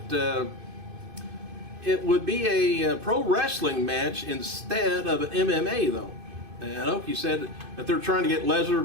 it would be a pro wrestling match instead of an MMA, though. Inoki said that they're trying to get Lesnar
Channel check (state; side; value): late; left; 2.5 ms